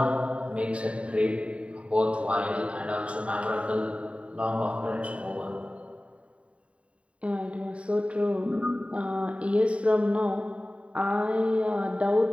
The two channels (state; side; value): late; left; 0.063 ms